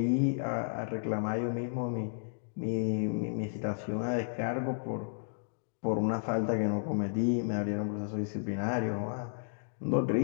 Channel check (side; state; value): right; silent; digital silence